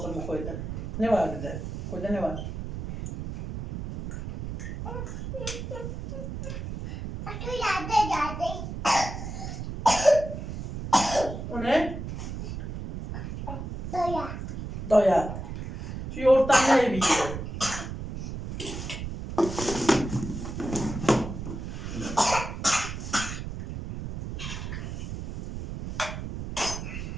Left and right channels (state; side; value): noise; right; rumble, 6 dB below the sound